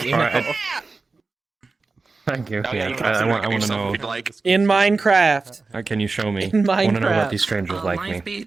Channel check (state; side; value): quieter; left; 3.9 dB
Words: you know. Alright. Thank you. Oh, Yeah, you can I want to yourself know. if you'd like. In Minecraft. Can you show me? In I want to know Minecraft. about these strangers like me.